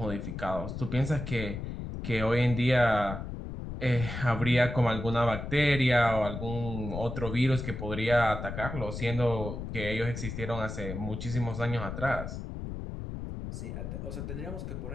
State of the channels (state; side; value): noise; left; rumble, 6 dB below the sound